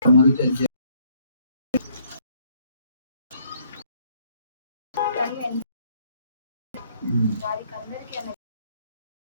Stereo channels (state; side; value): inverted; both; correlation -0.66